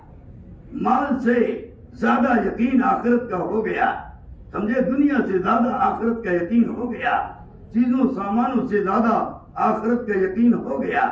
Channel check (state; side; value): identical; both; correlation 1.00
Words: مال سے زیادہ یقین آخرت کا ہو گیا. سمجھے؟ دنیا سے زیادہ آخرت کا یقین ہو گیا. چیزوں سامانوں سے زیادہ آخرت کا یقین ہو گیا.